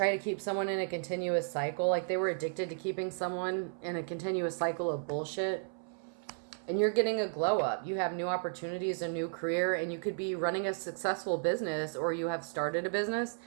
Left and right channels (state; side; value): silent; left; 55 dB below the other